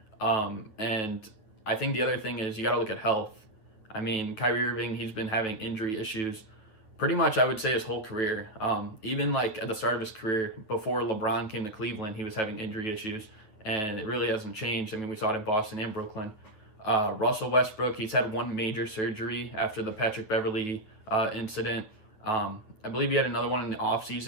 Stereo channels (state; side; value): late; right; 9.1 ms